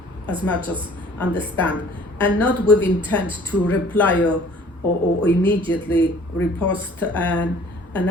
as much as understand, and not with intent to reply or immediately repost an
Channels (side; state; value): both; normal; correlation 0.53